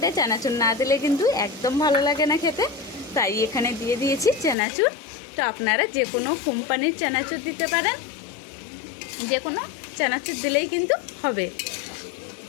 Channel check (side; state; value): right; drops out; at 4.5 s